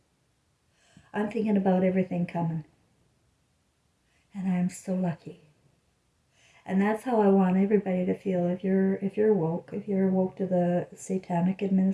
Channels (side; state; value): both; identical; correlation 1.00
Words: I'm thinking about everything coming. And I'm so lucky. And that's how I want everybody to feel. If you're woke to the satanic